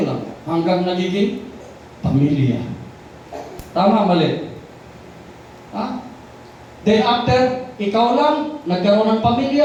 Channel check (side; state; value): both; identical; correlation 1.00